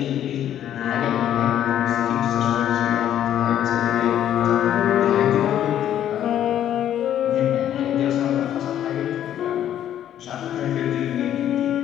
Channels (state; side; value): quieter; right; 10.9 dB